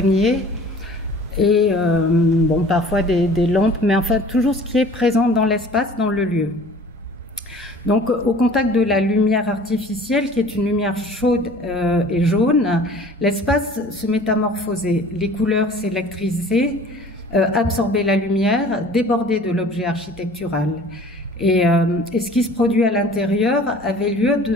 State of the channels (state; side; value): normal; both; correlation 0.47